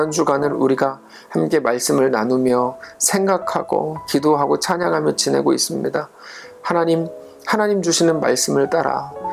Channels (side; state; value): both; identical; correlation 1.00